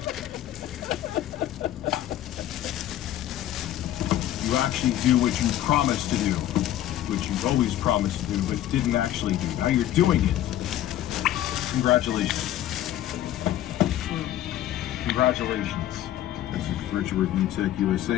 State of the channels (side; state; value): right; quieter; 12.7 dB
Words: You actually do what you promised to do, which you've always promised to do, but didn't actually do. Now you're doing it. Congratulations. Congratulations. This is Richard with UTech